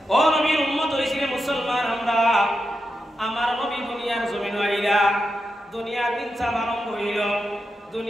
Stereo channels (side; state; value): both; normal; correlation 0.87